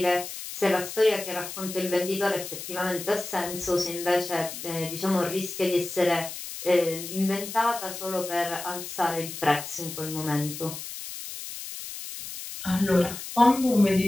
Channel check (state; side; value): noise; left; hiss, 9 dB below the sound